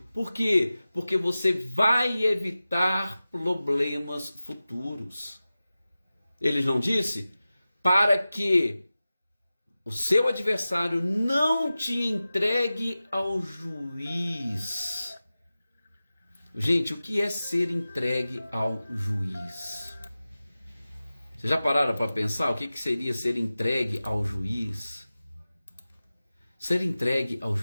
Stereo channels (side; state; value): both; inverted; correlation -0.95